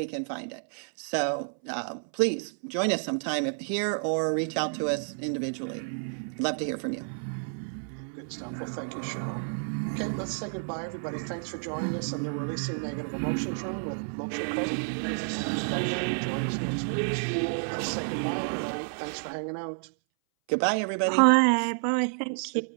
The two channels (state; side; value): silent; left; 58 dB below the other